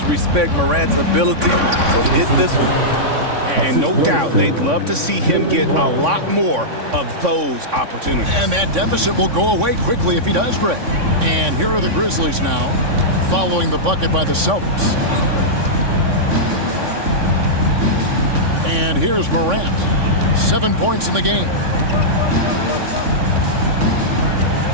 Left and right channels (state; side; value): late; left; 3.6 ms